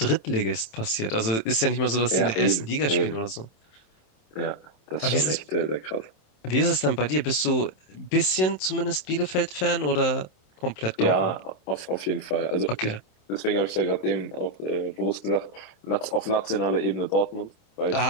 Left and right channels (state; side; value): late; right; 27 ms